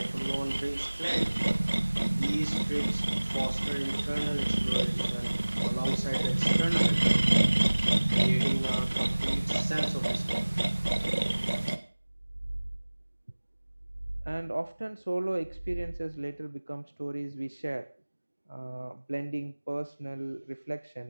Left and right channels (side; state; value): both; inverted; correlation -1.00